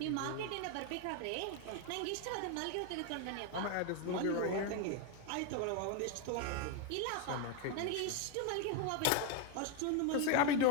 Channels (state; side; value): different; both; correlation 0.01